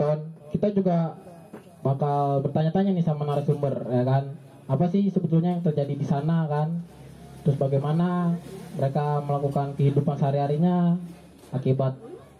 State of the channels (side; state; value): both; identical; correlation 1.00